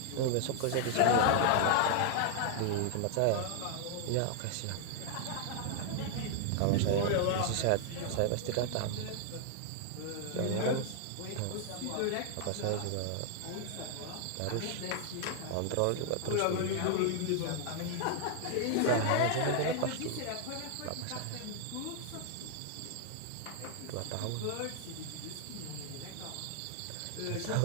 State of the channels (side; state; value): both; different; correlation 0.00